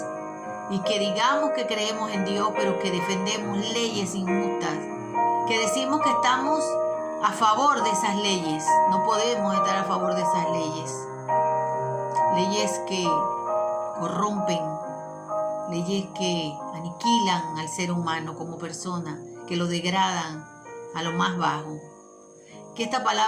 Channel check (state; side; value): identical; both; correlation 1.00